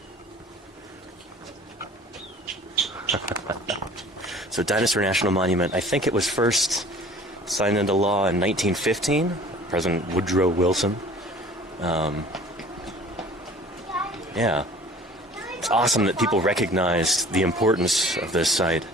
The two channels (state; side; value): normal; both; correlation 0.47